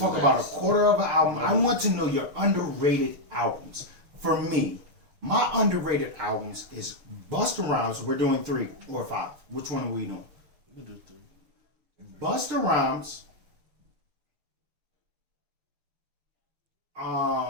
is about a nice. quarter of an album. I want to know your underrated albums. For me, my underrated albums is Busta Rhymes. We're doing 3 or 5. Which one are we doing? You do too. Busta Rhymes.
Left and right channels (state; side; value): late; left; 6.7 ms